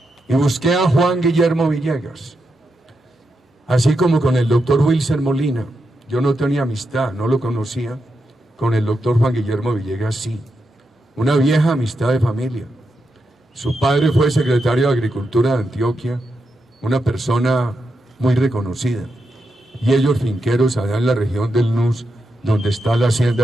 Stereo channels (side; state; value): both; normal; correlation 0.85